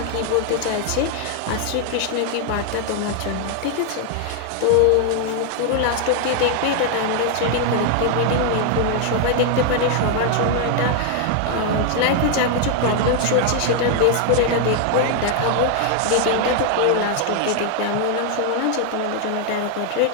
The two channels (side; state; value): both; different; correlation 0.00